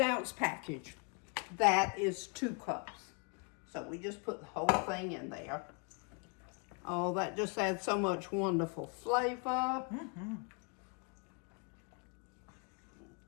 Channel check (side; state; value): right; quieter; 35.8 dB